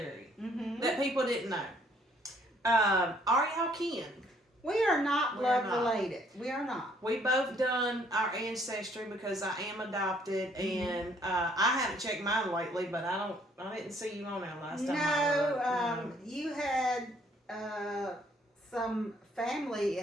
that people didn't know. Are y'all kin? We are not blood related. We are not. We both done our ancestry because I am adopted, and I haven't checked mine lately. But I didn't see you on there last time. No, you had some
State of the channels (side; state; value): both; normal; correlation 0.64